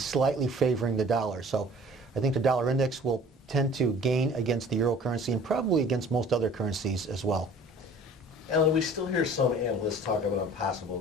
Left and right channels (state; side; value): normal; both; correlation 0.48